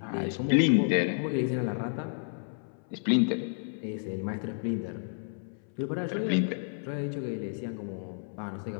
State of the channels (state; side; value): silent; right; 57 dB below the other